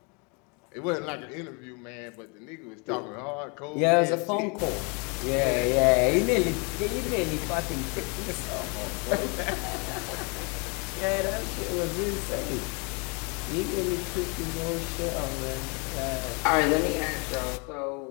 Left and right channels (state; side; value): quieter; right; 33.3 dB